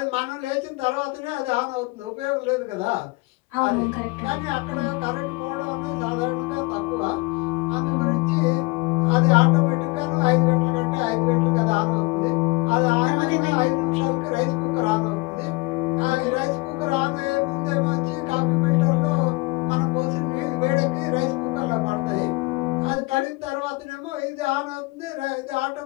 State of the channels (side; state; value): right; quieter; 25.2 dB